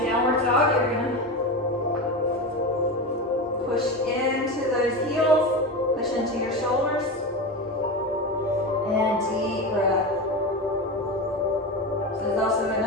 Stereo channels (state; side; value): normal; both; correlation 0.21